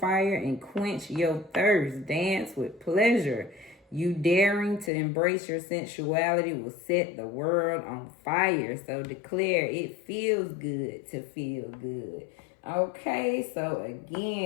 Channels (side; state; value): right; drops out; at 4.9 s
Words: and quench your thirst. Dance with pleasure. You daring to embrace your sensuality will set the world on fire. So declare it feels good to feel good. Okay, so